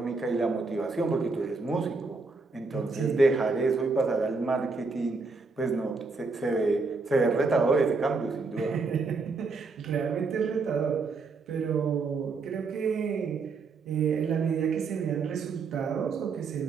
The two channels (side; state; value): left; quieter; 4.2 dB